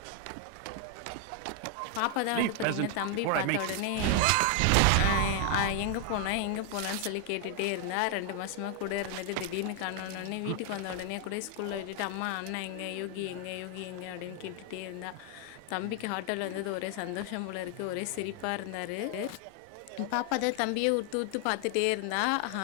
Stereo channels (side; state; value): both; different; correlation 0.00